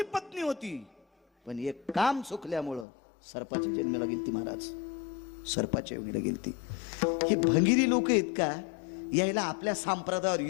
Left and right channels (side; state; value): right; drops out; at 2.9 s